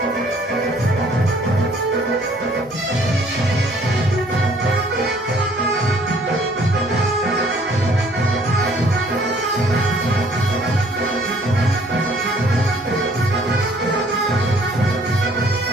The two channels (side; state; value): both; normal; correlation 0.59